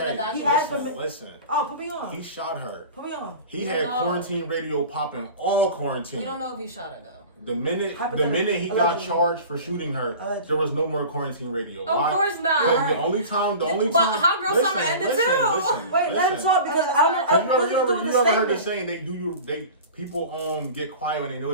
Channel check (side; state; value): both; inverted; correlation -0.37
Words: document. He asked listen, for. listen. Oh, put me on. He shot her. Put me on. He We had don't know. quarantine radio popping all quarantine. We don't know if he shot her though. The minute Hypothetically. he got Allegedly. charged for shooting her, Allegedly. there was no more quarantine radio. Of course not. Because the only time. But Hot Girl Summer ended too. Wait, let him talk because I don't know. Okay. what he's doing You the ever heard the statement. saying people get quiet when they know